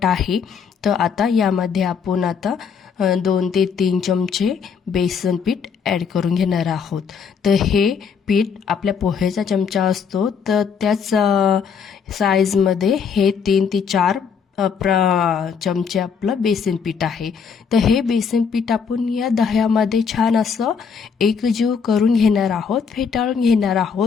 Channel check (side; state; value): right; quieter; 6.3 dB